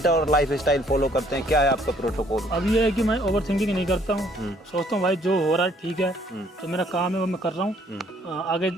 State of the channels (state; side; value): normal; both; correlation 0.63